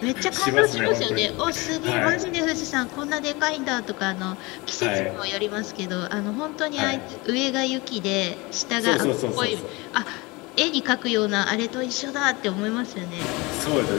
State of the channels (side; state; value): right; quieter; 24.5 dB